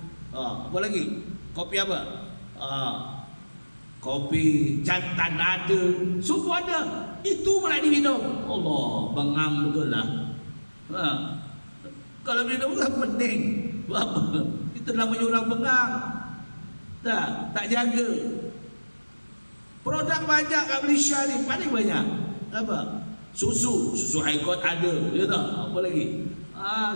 Apa lagi? Kopi apa? Kopi jantan ada. Semua ada. Itu pula diminum. Allah, bengang betul lah. Kalau minum kan pening. Apa? Itu namanya orang bengang. Tak jaga. Produk banyak kat Malaysia ni, paling banyak. Apa? Susu Haikot ada. Ya tak? Apa lagi?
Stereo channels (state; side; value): inverted; both; correlation -1.00